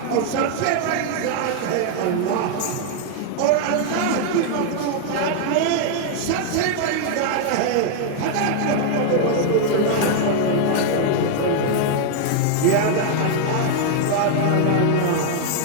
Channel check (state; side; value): different; both; correlation 0.00